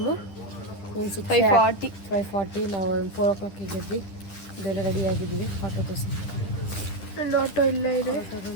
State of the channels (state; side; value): late; right; 10 ms